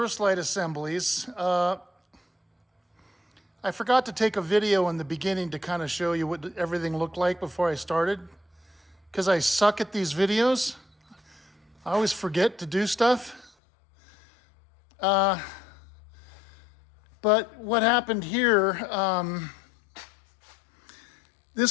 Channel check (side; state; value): right; drops out; at 13.5 s